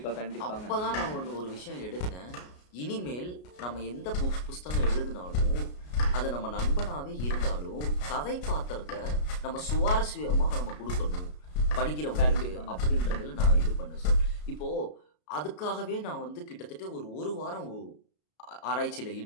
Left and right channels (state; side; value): late; right; 33 ms